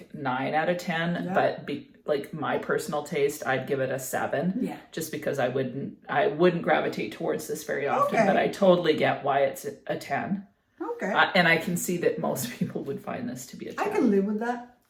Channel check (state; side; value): identical; both; correlation 1.00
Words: 9 out of 10. Yeah. But like my personal taste, I'd give it a 7. Yeah. Just because I wouldn't gravitate towards this very often, Okay. but I totally get why it's a 10. Okay. And I can see that most people would find this to be a 10. I can live with that.